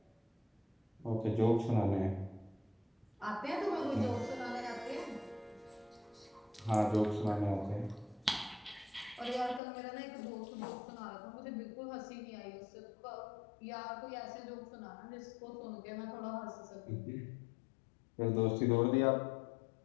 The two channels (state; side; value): drops out; right; at 9.6 s